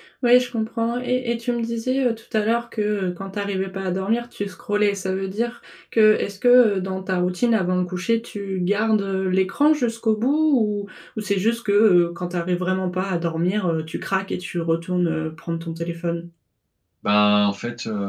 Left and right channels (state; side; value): identical; both; correlation 1.00